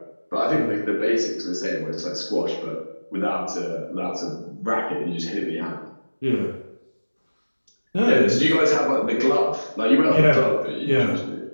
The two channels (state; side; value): inverted; both; correlation -1.00